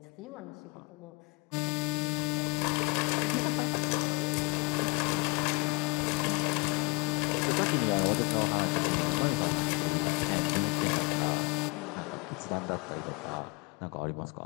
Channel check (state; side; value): quieter; right; 29.8 dB